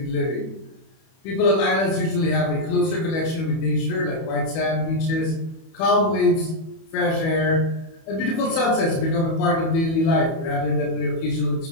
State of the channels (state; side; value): late; right; 31 ms